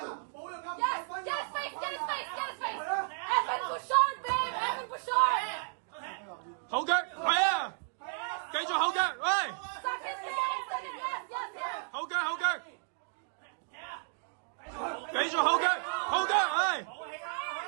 冇用㗎。後腳，係啊，繼續後腳，喂，後腳，後腳，繼續後腳，後腳，係，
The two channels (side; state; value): left; silent; digital silence